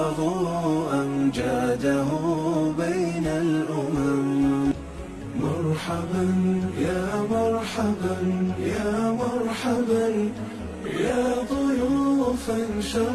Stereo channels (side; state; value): both; identical; correlation 1.00